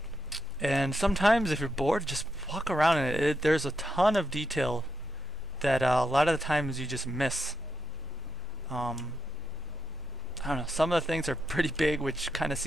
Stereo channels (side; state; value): left; noise; hum, 23 dB below the sound